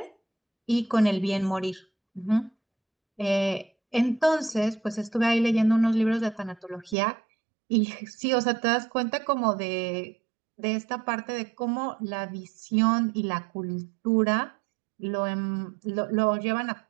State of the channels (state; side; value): drops out; left; at 7.0 s